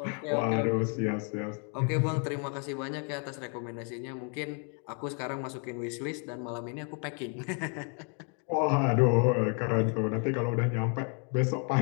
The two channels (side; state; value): right; quieter; 39.9 dB